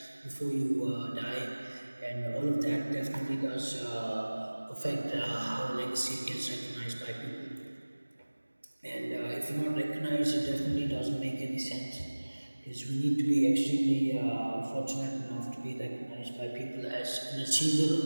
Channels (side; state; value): both; inverted; correlation -1.00